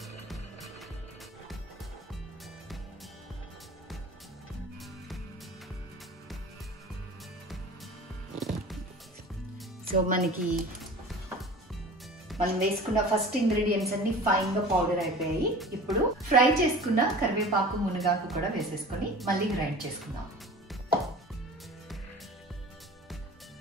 సో మనకి మనం వేసుకున్న ఫస్ట్ ఇంగ్రీడియంట్స్ అన్ని ఫైన్ గా పౌడర్ అయిపోయాయి. ఇప్పుడు ఫ్రై చేసుకున్న కరివేపాకు, మునగాకు కూడా వేసేసుకొని మళ్ళీ గ్రైండ్ చేసుకుందాం.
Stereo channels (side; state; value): both; normal; correlation 0.40